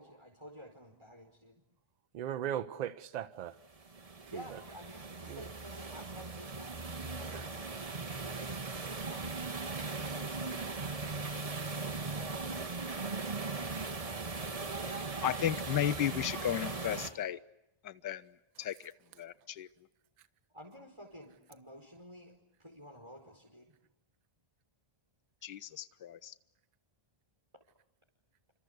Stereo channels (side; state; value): left; late; 1.7 ms